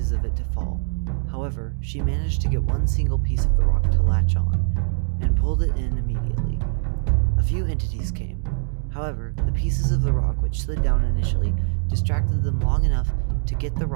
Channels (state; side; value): silent; left; digital silence